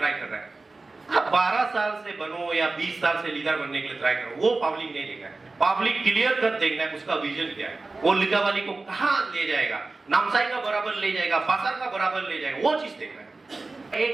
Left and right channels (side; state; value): left; quieter; 3.5 dB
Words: कर रहे हैं। आप 12 साल से बनो या 20 साल से लीडर बनने के लिए ट्राई करो, वो पब्लिक नहीं देगा। पब्लिक क्लियर कर देखना है उसका विजन क्या है, वो लिकावाली को कहां ले जाएगा, नामसाई का बराबर ले जाएगा, बासर का बराबर ले जाएगा, वो चीज देखना है।